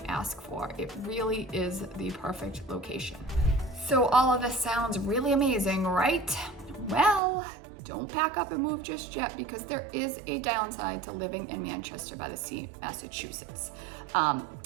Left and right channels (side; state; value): left; drops out; at 7.2 s